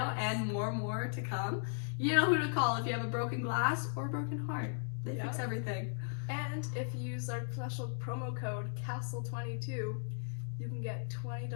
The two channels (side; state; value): right; silent; digital silence